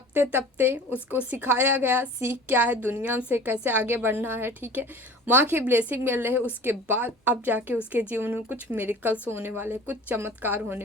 तपते उसको सिखाया गया, सीख क्या है, दुनिया से कैसे आगे बढ़ना है, ठीक है। माँ की ब्लेसिंग मिल रही है, उसके बाद अब जाके उसके जीवन में कुछ मिरेकल्स होने वाले, कुछ चमत्कार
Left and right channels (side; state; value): both; normal; correlation 0.42